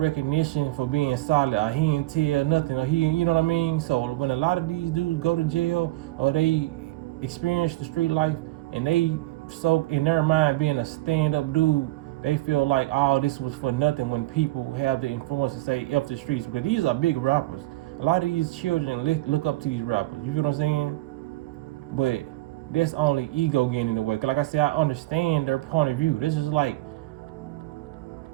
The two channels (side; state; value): left; quieter; 18.8 dB